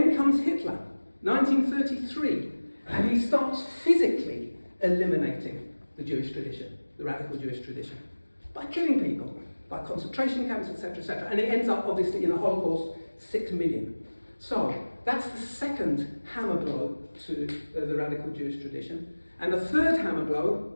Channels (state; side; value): inverted; both; correlation -1.00